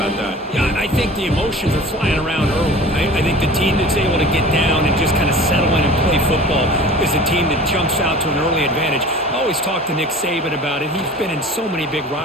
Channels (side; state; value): both; normal; correlation 0.41